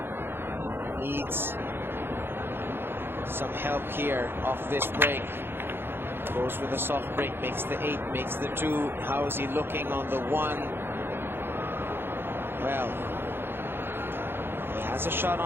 Needs some help here off this break. Goes with a soft break, makes the 8, makes the 2. How is he looking on the 1? Well, he has a shot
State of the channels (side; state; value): left; late; 0.11 ms